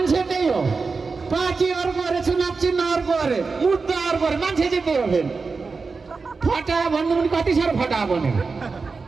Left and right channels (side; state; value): left; quieter; 4.5 dB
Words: त्यही हो, पार्टी अर्को अरे, चुनाव चिन्ह अर्को अरे, मुद्दा अर्को अरे, मान्छे चाहिँ त्यही हो। फेरि फटा भन्नु पनि कति साह्रो फटा बनेको